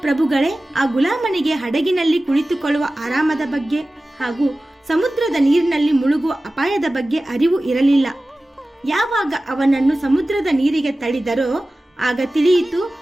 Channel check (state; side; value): normal; both; correlation 0.96